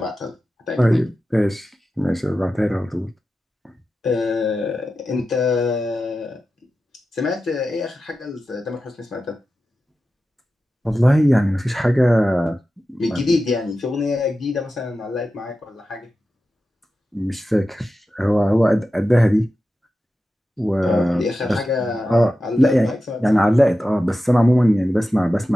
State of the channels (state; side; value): normal; both; correlation 0.92